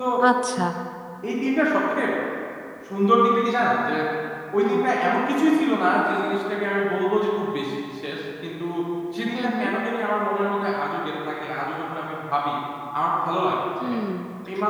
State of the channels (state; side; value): identical; both; correlation 1.00